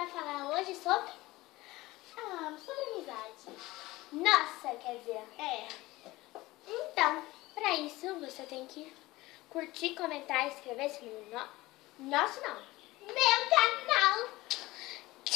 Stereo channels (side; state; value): right; quieter; 19.3 dB